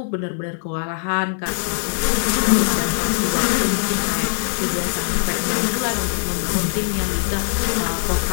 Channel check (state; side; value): silent; right; digital silence